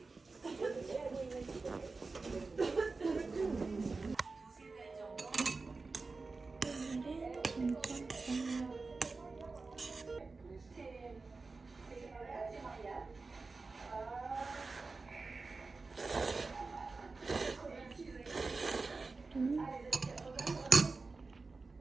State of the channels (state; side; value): quieter; left; 3.9 dB